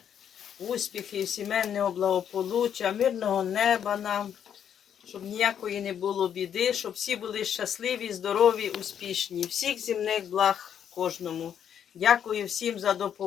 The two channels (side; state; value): right; quieter; 8.9 dB